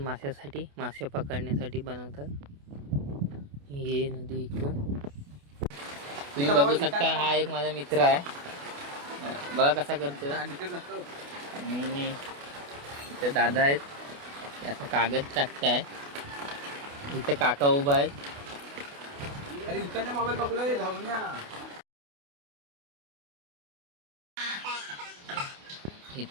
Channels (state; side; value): late; left; 28 ms